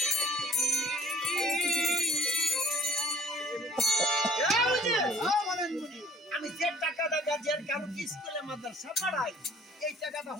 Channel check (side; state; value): both; normal; correlation 0.55